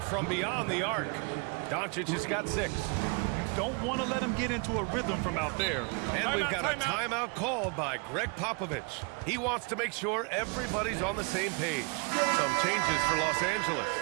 from beyond the arc. Doncic has got 6. Don't want to let him get into a rhythm from out there. And we've got a timeout called by Greg Popovich. He wants to make sure everybody's on the same page. Some changes for Los Angeles.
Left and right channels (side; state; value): left; quieter; 34.2 dB